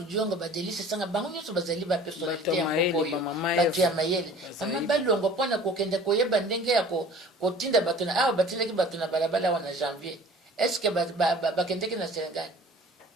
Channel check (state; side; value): normal; both; correlation 0.47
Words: Diongo ba Delice Sanga bango nyonso bazali ba personnalité ya mbokoyo bato ya mayele. Mama balongo mpona kokende koyeba ndenge ya kotinda bato na awa batindaki bato na balabala wana janvier. Est-ce que bakendeki na Sénégal?